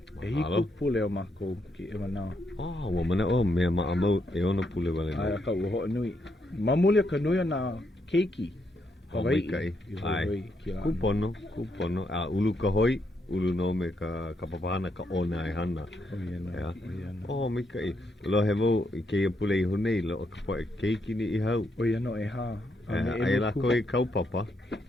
Hiku pule o mako ki e manao. Ua mana o mea maamau ona pule wale. Ai ka ua ho nui. Mamuli ka nui na keiki. Hawaiʻi. Ai. Kupono. Ulu ka hoi. Ulu no me ka papahana ka ona e hana. Mai kai. Lo he mo ke ia pule I honei lo ka poe keiki ni I hau. Oia no e ha. Ai lako I kaupapa.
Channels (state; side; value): normal; both; correlation 0.78